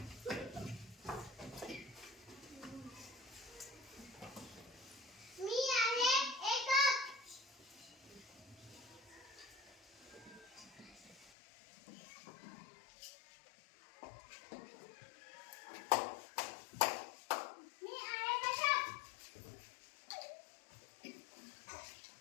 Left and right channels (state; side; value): drops out; right; at 11.3 s